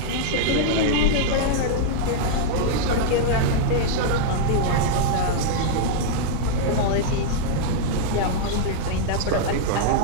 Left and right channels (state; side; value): different; both; correlation -0.01